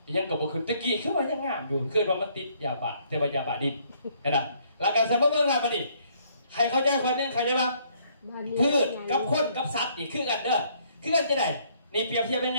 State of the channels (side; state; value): both; inverted; correlation -0.65